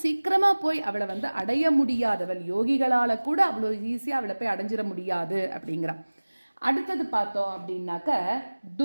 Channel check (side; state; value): both; inverted; correlation -1.00